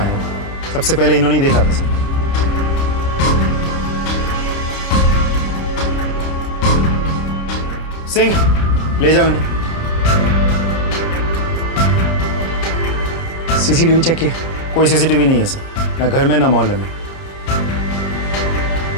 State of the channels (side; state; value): right; late; 30 ms